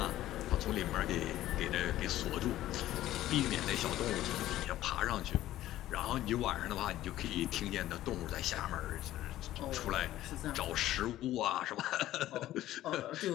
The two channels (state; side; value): quieter; right; 14.2 dB